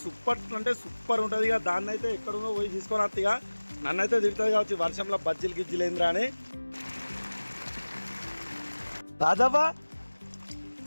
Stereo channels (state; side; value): inverted; both; correlation -1.00